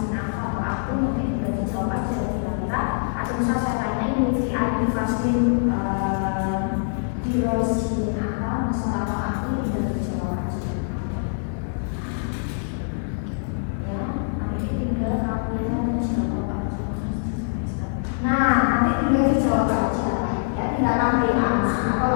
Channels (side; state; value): right; silent; 56 dB below the other